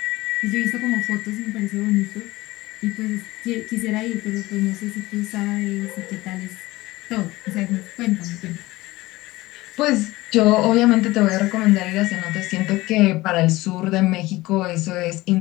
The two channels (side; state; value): right; quieter; 19.3 dB